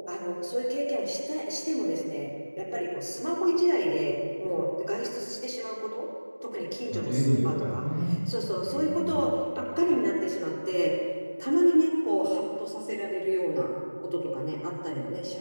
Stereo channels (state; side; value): inverted; both; correlation -1.00